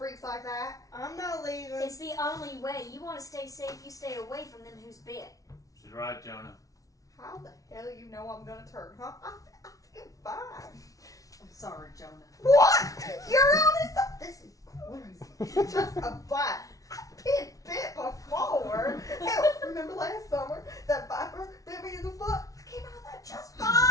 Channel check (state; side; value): late; right; 0.17 ms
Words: like that. I'm not leaving. It's the only way. You want to stay safe, you stay away from them who's bit. She's right, Jonah. How the hell you know I'm gonna turn, huh? I feel fine. I'm sorry, Jonah. What? You're honest? This is crazy. Just a bite. I've been bit before. Hell, remember last summer? That viper bit me in the foot? I came out of that just fine.